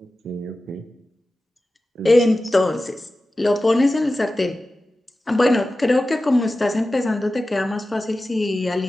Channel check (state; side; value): normal; both; correlation 0.95